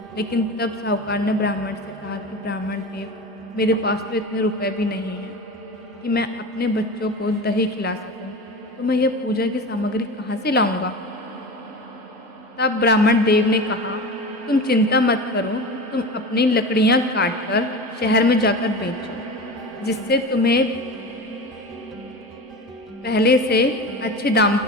लेकिन तब साहूकार ने ब्राह्मण से कहा कि ब्राह्मण देव, मेरे पास तो इतने रुपए भी नहीं हैं कि मैं अपने बच्चों को दही खिला सकूं, तो मैं यह पूजा की सामग्री कहाँ से लाऊंगा? तब ब्राह्मण देव ने कहा, तुम चिंता मत करो, तुम अपनी लकड़ियाँ काटकर शहर में जाकर बेचो, जिससे तुम्हें पहले से अच्छे दाम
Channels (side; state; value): both; normal; correlation 0.30